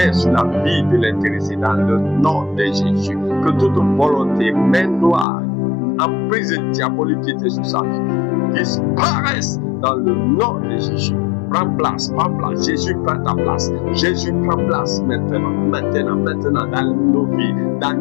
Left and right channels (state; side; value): drops out; right; at 5.2 s